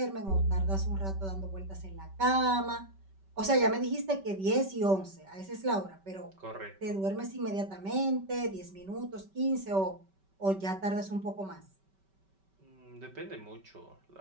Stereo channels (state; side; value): late; left; 5.2 ms